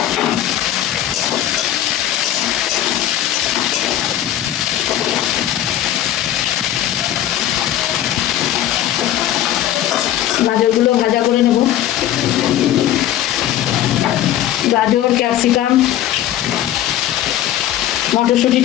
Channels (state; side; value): quieter; right; 12.2 dB